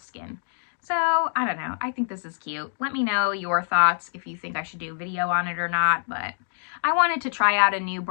So I don't know. I think this is cute. Let me know your thoughts if you think I should do a video on it or not, but I wanted to try out a new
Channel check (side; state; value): right; silent; digital silence